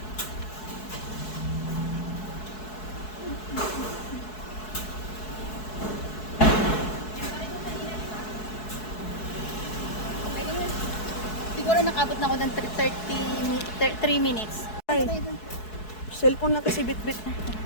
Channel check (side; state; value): right; late; 4.7 ms